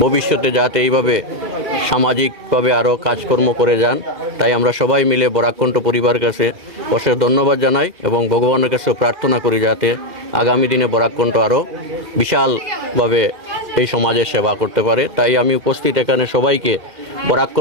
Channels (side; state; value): left; late; 2.4 ms